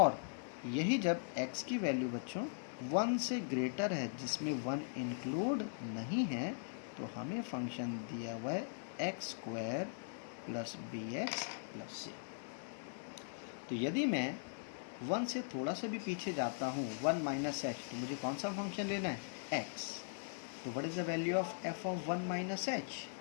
यही जब x की वैल्यू बच्चों 1 से ग्रेटर है जिसमें 1 इंक्लूड नहीं है, तो हमें फंक्शन दिया हुआ है x² plus bx plus c। तो यदि मैं 1 से थोड़ा सा भी पीछे जाता हूँ, 1 माइनस h, तो मुझे कौन सा फंक्शन लेना है? x। तो what is the value of f of 1 minus h?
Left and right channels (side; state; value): right; silent; 51 dB below the other